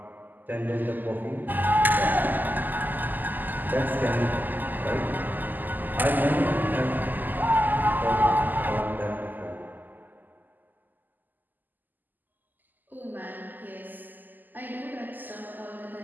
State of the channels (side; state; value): left; late; 0.086 ms